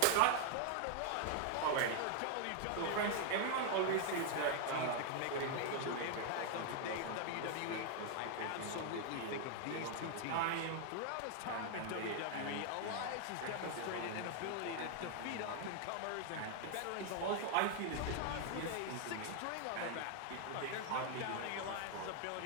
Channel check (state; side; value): different; both; correlation 0.00